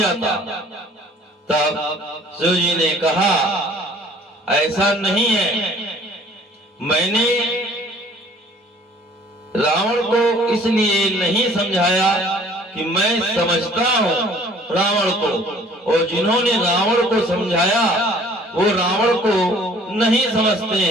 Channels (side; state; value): both; normal; correlation 0.54